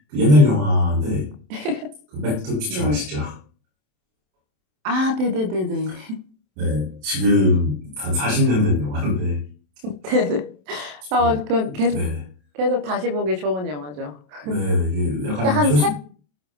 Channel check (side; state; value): left; late; 27 ms